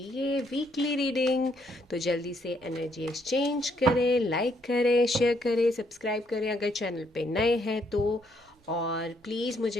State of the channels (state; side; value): normal; both; correlation 0.72